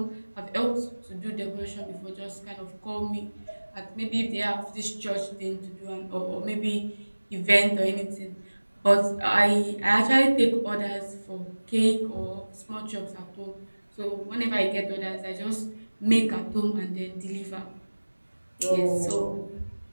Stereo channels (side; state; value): both; inverted; correlation -1.00